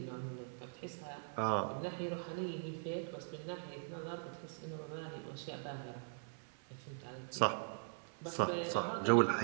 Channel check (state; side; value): silent; left; digital silence